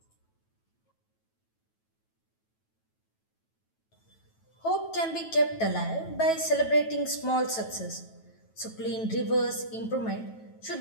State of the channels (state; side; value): late; right; 9.2 ms